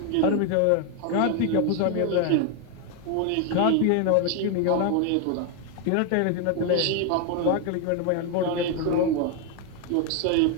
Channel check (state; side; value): different; both; correlation 0.01